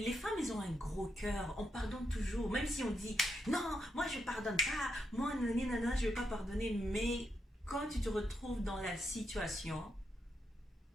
femmes, elles ont un gros cœur, on pardonne toujours, même si on dit non, moi je pardonne pas, moi nanana, je vais pas pardonner, mais quand tu te retrouves dans la situation,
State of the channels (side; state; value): both; normal; correlation 0.81